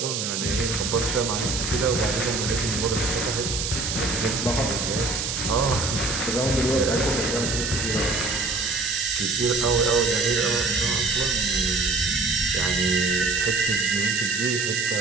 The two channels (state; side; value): noise; right; hiss, 2 dB below the sound